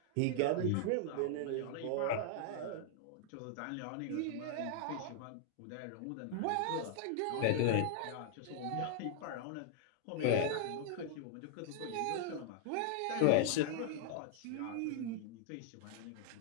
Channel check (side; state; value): both; different; correlation -0.01